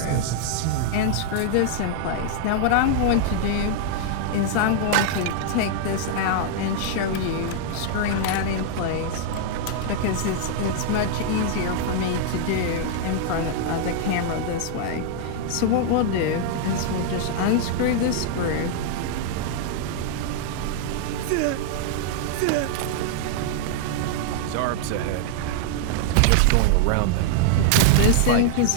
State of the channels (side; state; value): both; different; correlation -0.01